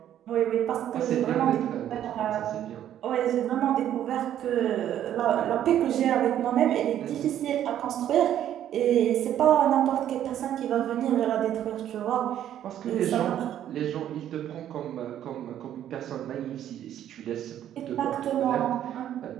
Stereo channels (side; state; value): left; quieter; 11.0 dB